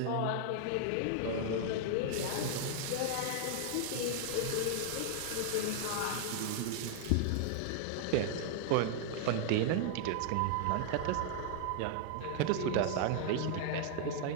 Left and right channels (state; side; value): different; both; correlation -0.01